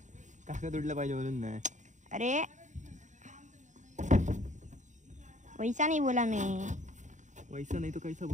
कागद उडलं पाहिजे म्हणून नाही. अरे वैसा नहीं बोला मैं. वैसा नहीं तो कैसा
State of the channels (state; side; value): late; left; 0.35 ms